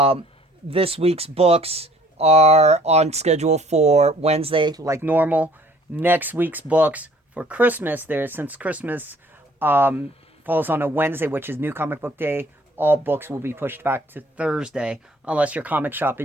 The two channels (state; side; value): normal; both; correlation 0.56